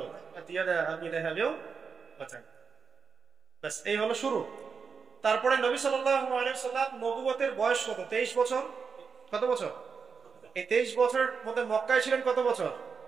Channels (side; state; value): left; quieter; 5.6 dB